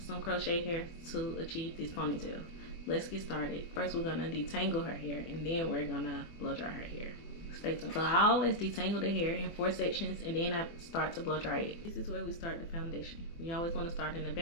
some crochet hair to achieve this ponytail. Let's get started. First we're gonna detangle her hair and then we're gonna blow dry her hair. Stay tuned. So I always detangle the hair in 4 sections and then I start to blow dry it. This is where we start the foundation. We always want to start in the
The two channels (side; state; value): right; late; 24 ms